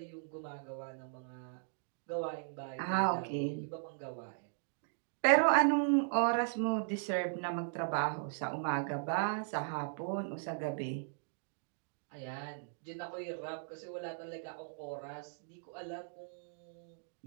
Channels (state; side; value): silent; left; digital silence